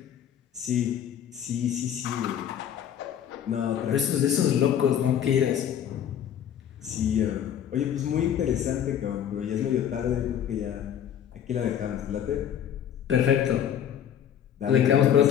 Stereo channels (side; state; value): right; quieter; 9.5 dB